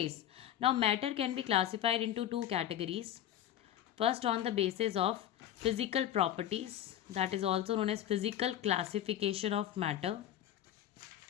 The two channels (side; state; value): right; quieter; 11.4 dB